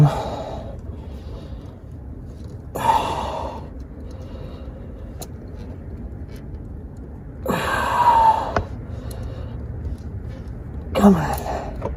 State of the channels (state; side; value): identical; both; correlation 1.00